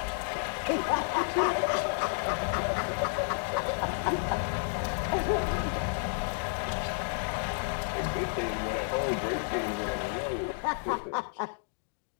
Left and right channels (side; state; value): right; silent; 57 dB below the other